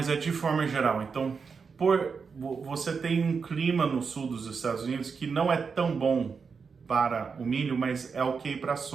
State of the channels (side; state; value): left; quieter; 5.5 dB